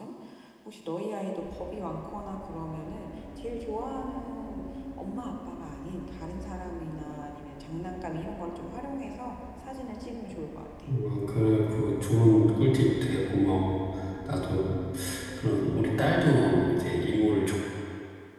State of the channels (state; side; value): identical; both; correlation 1.00